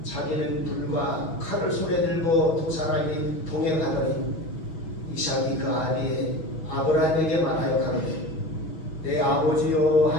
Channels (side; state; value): right; late; 6.2 ms